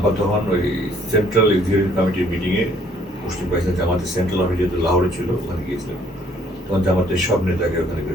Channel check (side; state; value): both; normal; correlation 0.62